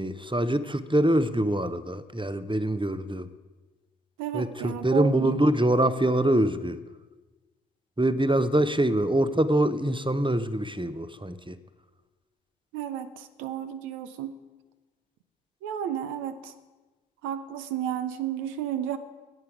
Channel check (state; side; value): normal; both; correlation 0.75